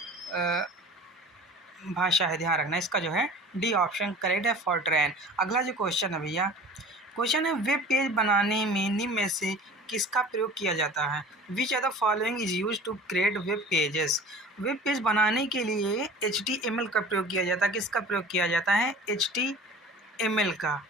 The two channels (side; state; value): both; normal; correlation 0.41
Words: भाषा है। ध्यान रखना इसका जो है डी ऑप्शन करेक्ट है, फॉरट्रैन। अगला जो क्वेश्चन है भैया, क्वेश्चन है वेब पेज बनाने में निम्न में से किसका प्रयोग किया जाता है? Which are the following is use to create web pages? Web page बनाने के लिए HTML का प्रयोग किया जाता है। किसका प्रयोग किया जाता है? HTML का,